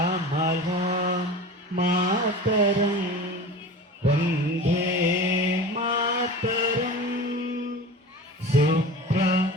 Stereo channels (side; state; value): both; normal; correlation 0.34